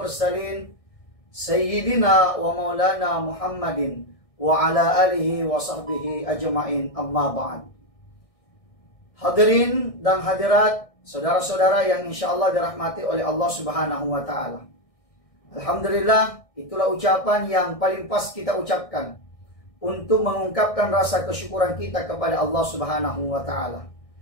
sayyidina wa maulana Muhammadin wa ala alihi wa sahbihi ajma'in, amma ba'd. Hadirin dan hadirat, saudara-saudara yang insya Allah dirahmati oleh Allah Subhanahu wa Ta'ala. Alhamdulillah, itulah ucapan yang paling pas kita ucapkan untuk mengungkapkan rasa kesyukuran kita kepada Allah Subhanahu wa Ta'ala.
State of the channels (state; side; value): late; right; 1.6 ms